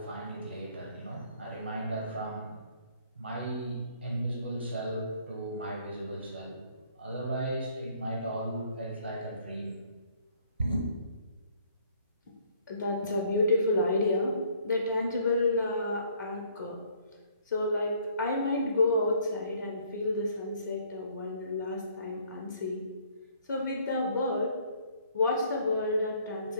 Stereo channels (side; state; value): both; inverted; correlation -0.62